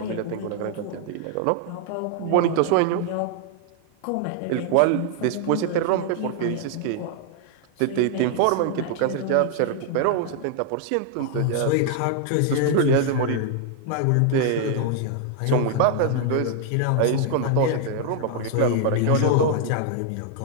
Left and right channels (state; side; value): different; both; correlation 0.00